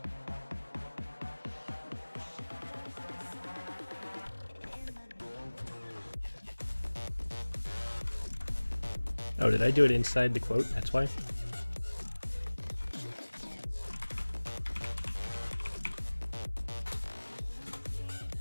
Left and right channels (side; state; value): both; inverted; correlation -1.00